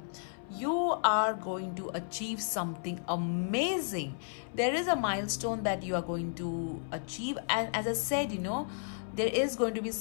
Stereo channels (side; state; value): right; silent; 56 dB below the other